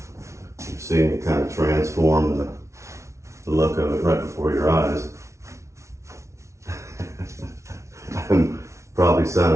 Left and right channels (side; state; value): left; late; 0.14 ms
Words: You're seeing it kind of transform the look of it right before your eyes. I'm probably